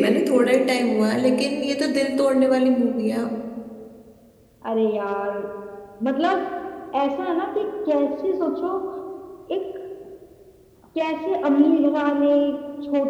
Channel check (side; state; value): both; identical; correlation 1.00